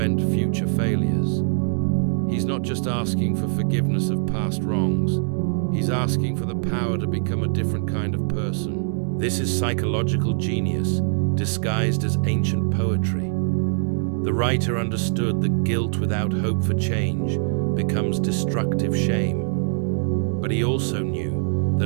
future failures. He's not just asking for forgiveness of past wrongs, he's asking for the power to become a different kind of person. This is psychological genius, disguised as ancient poetry. The writer understood that guilt without hope for change becomes destructive shame. But he also knew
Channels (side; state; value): left; silent; 63 dB below the other